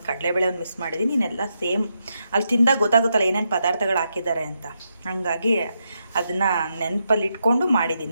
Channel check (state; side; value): inverted; both; correlation -0.82